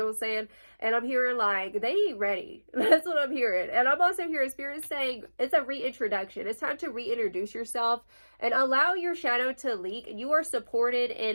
what I'm saying? And I'm hearing like they ain't ready. That's what I'm hearing. And I'm also hearing Spirit saying it's a reintroduction. It's time to reintroduce yourself and allow your shadow to leak. You are supported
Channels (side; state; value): both; inverted; correlation -1.00